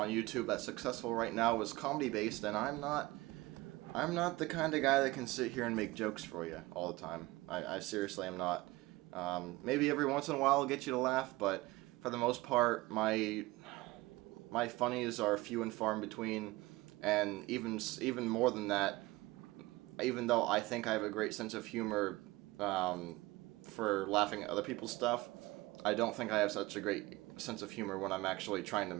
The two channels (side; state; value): left; quieter; 20.6 dB